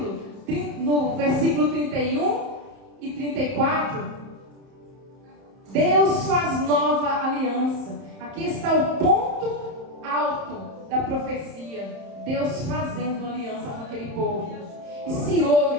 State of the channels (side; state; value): left; late; 31 ms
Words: no versículo 31 e 34, Deus faz nova aliança. Aqui está o ponto alto da profecia. Deus fazendo aliança com aquele povo. E se